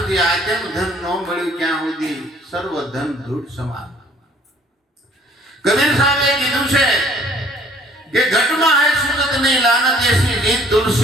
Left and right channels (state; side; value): normal; both; correlation 0.57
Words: આત્મ ધન ન મળ્યું ત્યાં સુધી સર્વ ધન ધૂળ સમાન. કબીર સાહેબે કીધું છે કે ઘટમાં હે સુગત નહીં લાનત એસી રીત,